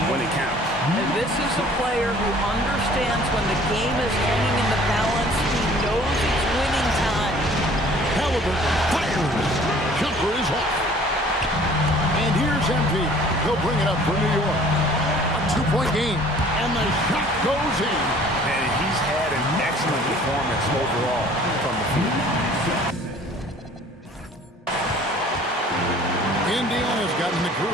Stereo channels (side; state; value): both; normal; correlation 0.52